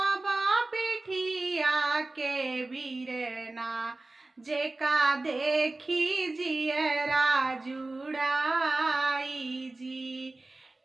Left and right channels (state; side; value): quieter; left; 3.1 dB